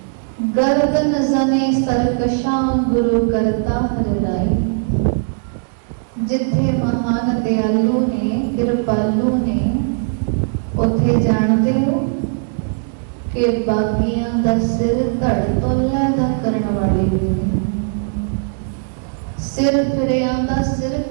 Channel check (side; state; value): left; silent; digital silence